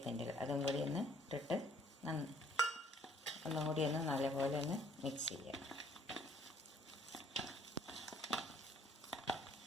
അതും കൂടി ഒന്ന് ഇട്ടിട്ട് ഒന്നും കൂടി ഒന്ന് നല്ലപോലെ ഒന്ന് മിക്സ് ചെയ്യാം.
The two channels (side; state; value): both; normal; correlation 0.62